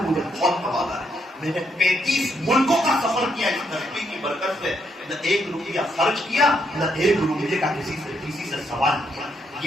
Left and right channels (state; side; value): normal; both; correlation 0.77